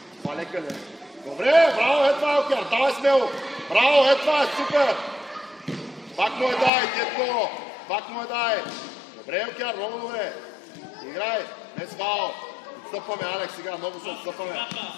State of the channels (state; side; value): drops out; right; at 6.7 s